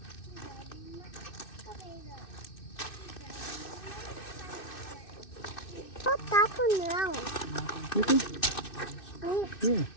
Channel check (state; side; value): late; right; 2.6 ms